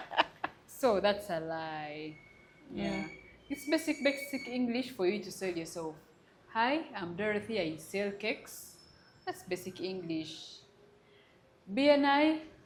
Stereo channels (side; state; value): both; identical; correlation 1.00